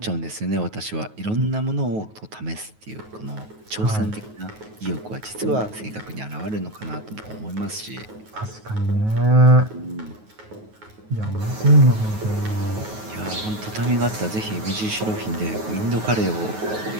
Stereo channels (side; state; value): left; late; 9.4 ms